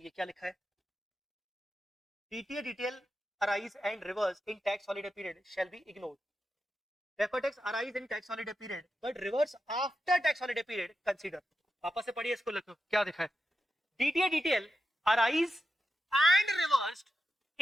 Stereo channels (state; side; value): normal; both; correlation 0.90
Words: ये क्या लिखा है? DTA DTL arise and reverse in tax holiday period shall be ignored. Deferred tax arise in tax holiday period but reverse after tax holiday period consider. वापस से पढ़िए इसको, लिखो क्या दिखा है। DTA DTL arise and reversed